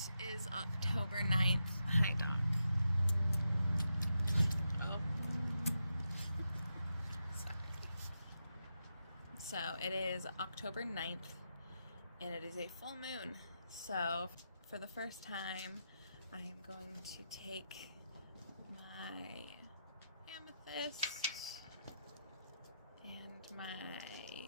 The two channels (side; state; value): both; inverted; correlation -0.86